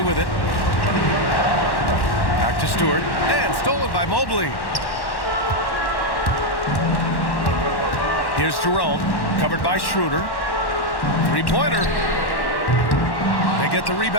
with it. Back to Stewart, and stolen by Mobley. Here's Jerome, covered by Schroeder. Three-pointer. They get the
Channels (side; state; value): right; late; 1.1 ms